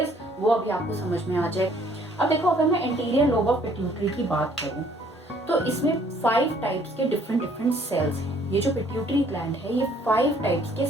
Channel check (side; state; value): both; normal; correlation 0.61